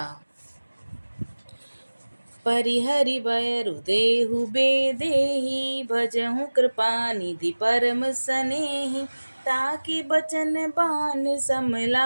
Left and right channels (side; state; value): both; inverted; correlation -1.00